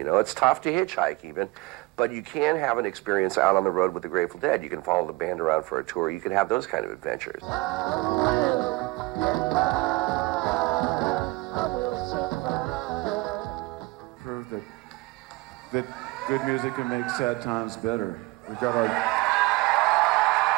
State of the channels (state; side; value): quieter; left; 22.7 dB